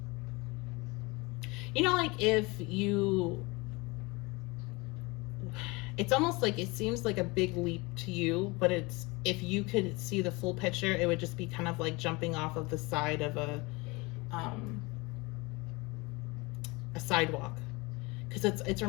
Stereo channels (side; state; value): right; quieter; 25.1 dB